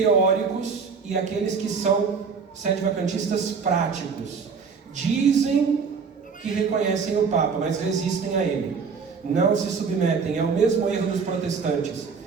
e aqueles que são sedevacantistas práticos. Dizem que reconhecem o Papa, mas resistem a ele. Não se submetem. É o mesmo erro dos protestantes.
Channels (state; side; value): quieter; left; 5.5 dB